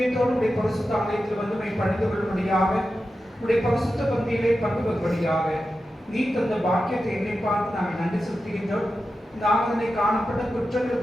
உடைய பரிசுத்த ஆலயத்தில் வந்து பணிந்து கொள்ளும்படியாக, உடைய பரிசுத்த பந்தியிலே பங்கு பெறும்படியாக நீ தந்த பாக்கியத்தை என்னை பார்த்து நாங்கள் நன்றி செலுத்துகின்றோம். இந்த ஆராதனை காணப்பட்ட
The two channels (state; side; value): normal; both; correlation 0.91